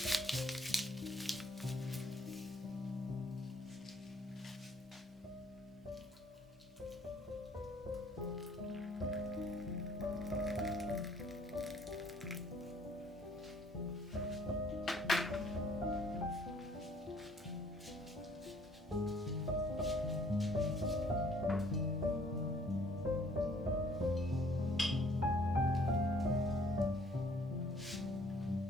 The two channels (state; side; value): normal; both; correlation 0.60